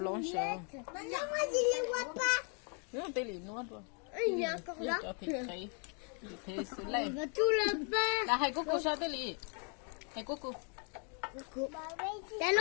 sao nếu tiêu lý nuốt rồi cho thịt thấy thế xử lý là hai cô sao tiêu lý hai cô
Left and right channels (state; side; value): quieter; right; 38.9 dB